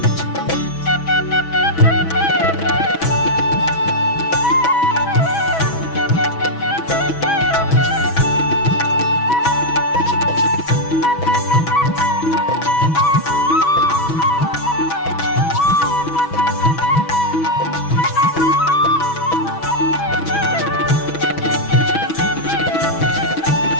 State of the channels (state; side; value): late; right; 6.1 ms